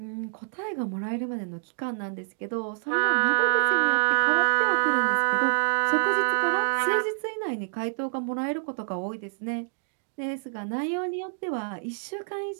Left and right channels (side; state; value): left; silent; digital silence